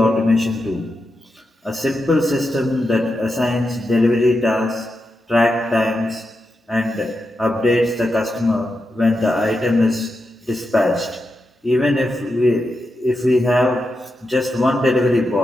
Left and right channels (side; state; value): both; normal; correlation 0.87